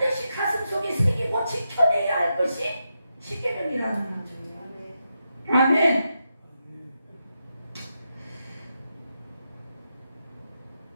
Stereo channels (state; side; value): inverted; both; correlation -0.86